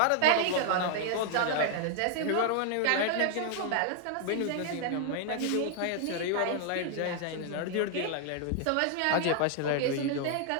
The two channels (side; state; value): both; different; correlation 0.00